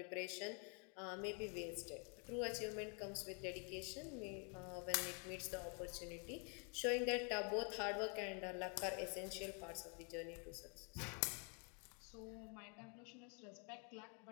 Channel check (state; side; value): quieter; right; 38.1 dB